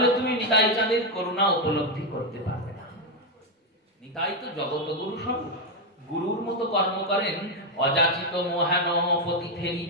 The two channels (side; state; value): both; normal; correlation 0.04